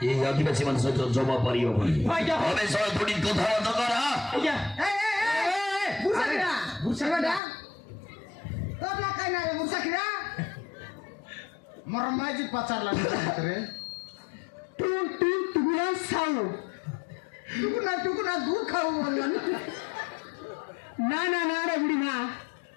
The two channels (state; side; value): drops out; right; at 7.4 s